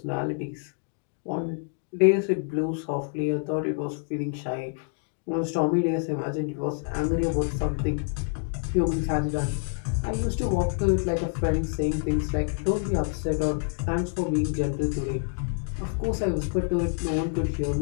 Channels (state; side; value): silent; right; 55 dB below the other